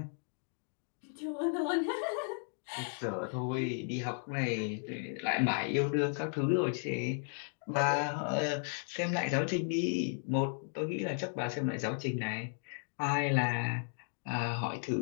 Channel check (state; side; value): silent; right; 55 dB below the other